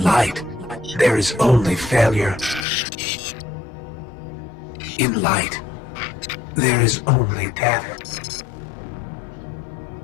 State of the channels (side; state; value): right; drops out; at 2.7 s